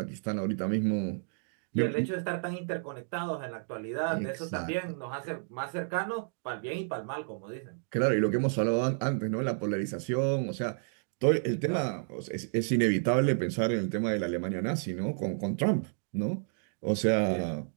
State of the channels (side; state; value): left; silent; digital silence